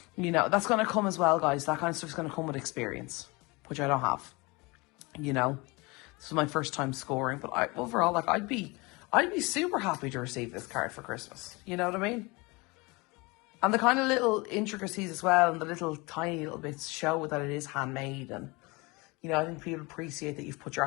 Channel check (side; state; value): right; quieter; 25.6 dB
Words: you know, that's going to come as well, guys. That kind of stuff's going to come with experience, which I don't have, you know. This is my first time scoring, but overall, like, I'd be super happy to receive this card for Christmas. You know what I mean? And the kind of little intricacies as well, and the little tiny little bits show that it is handmade. And, you know, I think people appreciate that you've put your